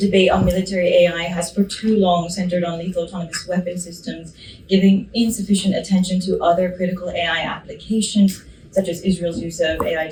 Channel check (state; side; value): identical; both; correlation 1.00